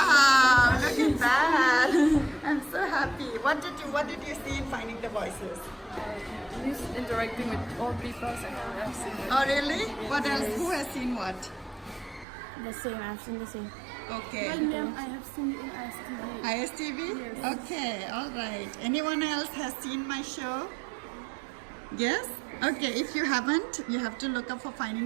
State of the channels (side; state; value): left; drops out; at 12.2 s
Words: look at that. I'm so happy. What did you see in Finding the Voices? He's interacting with old people, so I've seen it. Oh, really? What else? Who has seen what? The same, I've seen the same. Okay. I have seen it in ISTV. ISTV? Yes. Okay, all right. Anyone else has seen my show? Yes? Okay, if you haven't, you have to look up for